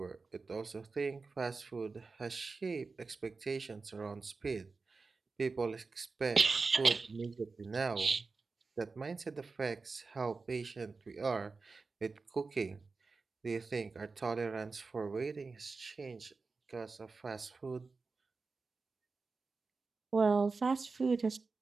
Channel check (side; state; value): left; quieter; 4.2 dB